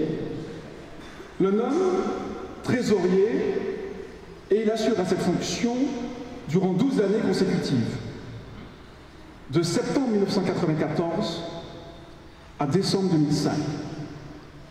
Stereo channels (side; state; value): both; identical; correlation 1.00